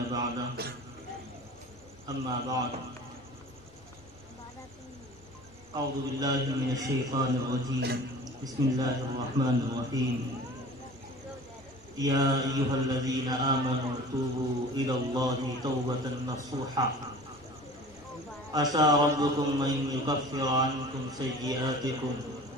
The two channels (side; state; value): both; normal; correlation 0.41